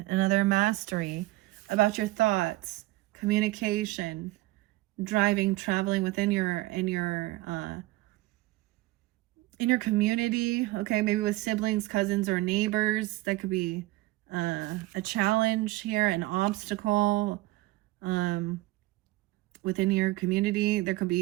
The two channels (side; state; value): left; quieter; 19.1 dB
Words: Another mastery about your thoughts, communication, driving, traveling within your community. Okay, maybe with siblings, cousins, or neighbors. That could be a challenge here, an obstacle within your community. There could